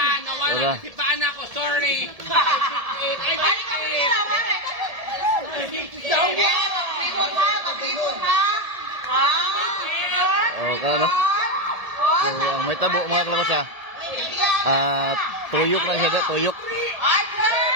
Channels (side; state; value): left; late; 1.7 ms